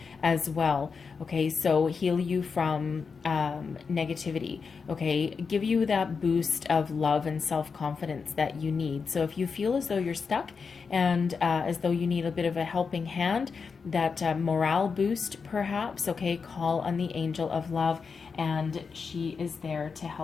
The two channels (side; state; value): right; quieter; 5.3 dB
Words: as well. Okay, so heal you from negativity. Okay, give you that boost of love and self-confidence that you need. So if you feel as though you're stuck and as though you need a bit of a helping hand, that morale boost perhaps, okay, call on the Angel of Love, and she is there to